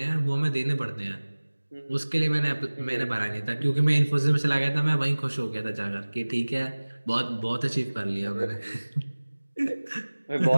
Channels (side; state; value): both; inverted; correlation -1.00